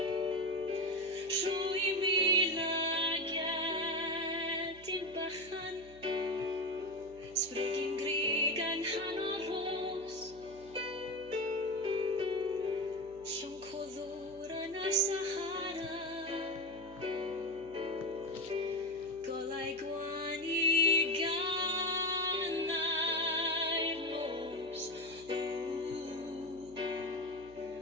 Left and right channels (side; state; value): right; noise; hum, 21 dB below the sound